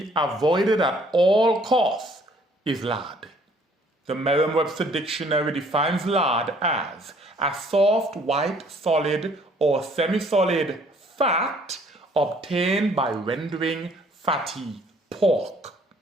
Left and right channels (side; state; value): both; normal; correlation 0.60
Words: avoided at all costs is lard. The Merriam-Webster dictionary defines lard as a soft, white, solid, or semi-solid fat obtained by rendering fatty pork.